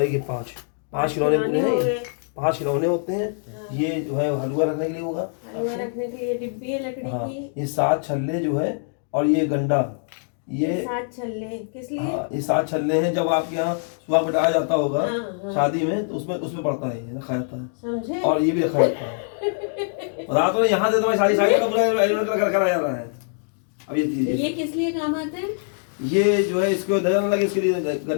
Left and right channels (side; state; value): right; silent; digital silence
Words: ये 5 खिलौने पूरे हैं। ये 5 खिलौने होते हैं। ये जो है हलवा रखने के लिए होगा, हलवा रखने के लिए डिब्बी है लकड़ी हाँ। की। ये 7 छल्ले जो है, और ये गंडा, ये 7 छल्ले किस लिए? हाँ, ये 7 छल्ले हैं। जब आपके यहाँ सुबह बिठाया जाता होगा हाँ। शादी में, तो उसमें पड़ता है, ये रखा जाता है। समझे? और ये भी रखा जाता है। बता तो यहाँ से तुम्हारी सारी का पूरा अरेंजमेंट करा जा रहा है। अब ये चीज, ये किस लिए काम आते हैं? ये जो है इसको नजर न लगे, इसके लिए